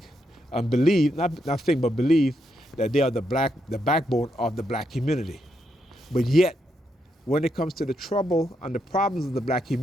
and believe, not think, but believe that they are the backbone of the black community. But yet, when it comes to the trouble and the problems of the black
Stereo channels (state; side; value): normal; both; correlation 0.80